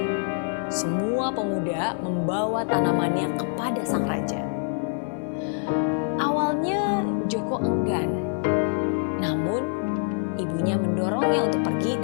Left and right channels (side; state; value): right; silent; 61 dB below the other